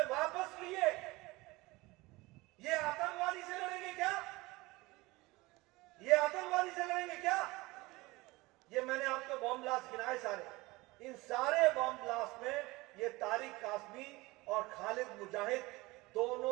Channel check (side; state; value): left; quieter; 21.8 dB